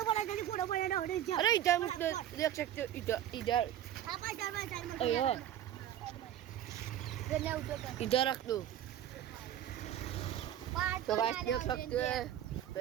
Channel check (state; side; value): quieter; left; 11.3 dB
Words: पड़ा ना अरे इधर देख सकते हो इधर इधर इधर रख दो तो गाइस देख सकते हो